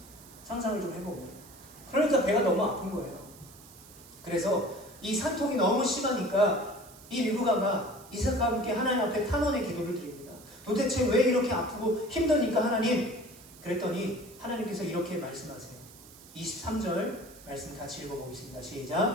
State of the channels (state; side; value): noise; right; hiss, 21 dB below the sound